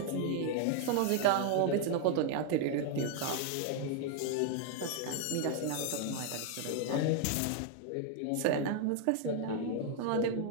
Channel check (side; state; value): both; different; correlation 0.00